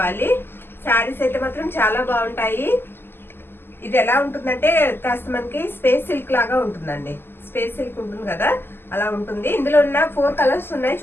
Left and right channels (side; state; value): right; late; 0.11 ms